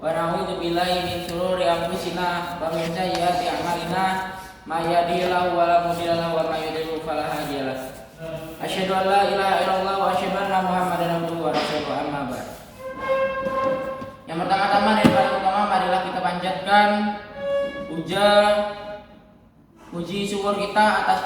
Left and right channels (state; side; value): identical; both; correlation 1.00